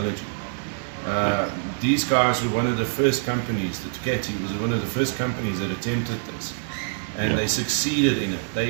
these guys were one of the first companies, the Ducati was one of the first companies that attempted this. And they succeeded in it. They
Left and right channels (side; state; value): left; silent; 62 dB below the other